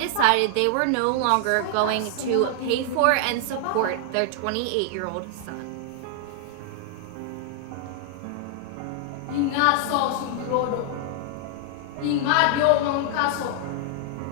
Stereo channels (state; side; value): different; both; correlation 0.00